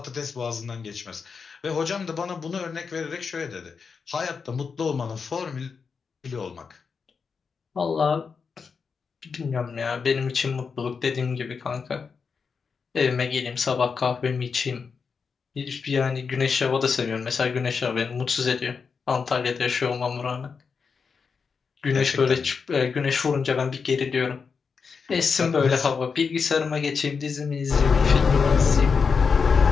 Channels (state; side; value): quieter; right; 5.5 dB